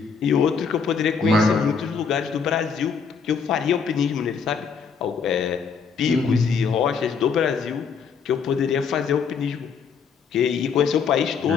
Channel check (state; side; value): quieter; right; 6.0 dB